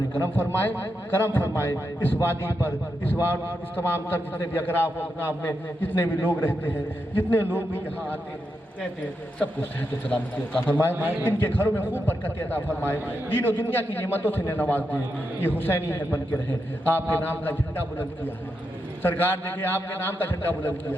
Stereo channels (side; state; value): both; normal; correlation 0.85